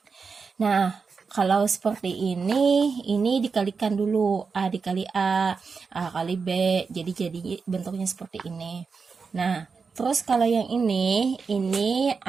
Nah, kalau seperti ini dikalikan dulu. A dikali A kali B, jadi bentuknya seperti ini. Nah, terus kalau yang ini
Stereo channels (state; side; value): quieter; left; 5.1 dB